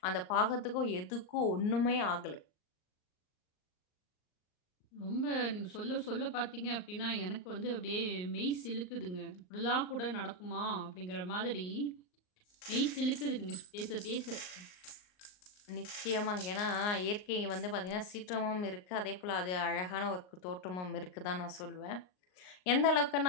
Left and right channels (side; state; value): right; late; 39 ms